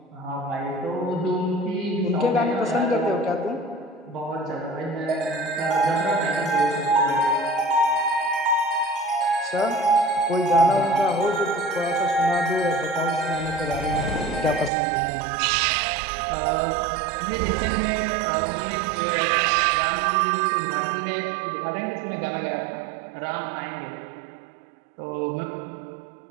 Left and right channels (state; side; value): drops out; left; at 14.7 s